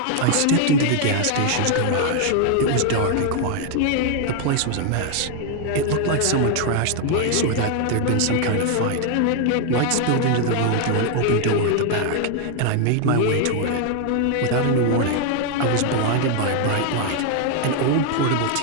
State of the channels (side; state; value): both; different; correlation 0.00